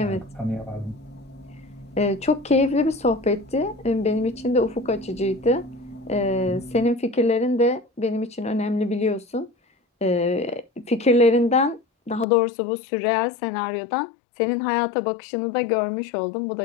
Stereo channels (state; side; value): drops out; right; at 12.2 s